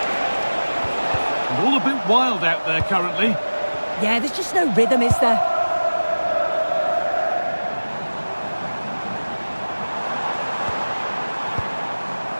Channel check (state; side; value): inverted; both; correlation -1.00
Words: And all a bit wild out there currently. Yeah, there's just no rhythm, is there?